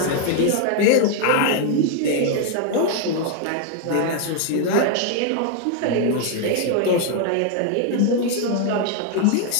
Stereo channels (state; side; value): different; both; correlation 0.00